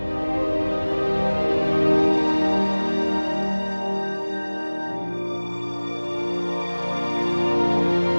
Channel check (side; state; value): both; inverted; correlation -1.00